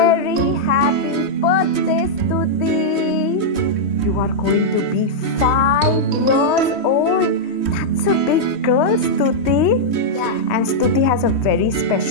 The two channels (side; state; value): right; late; 3.1 ms